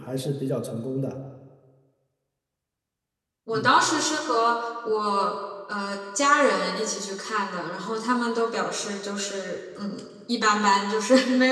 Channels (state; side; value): identical; both; correlation 1.00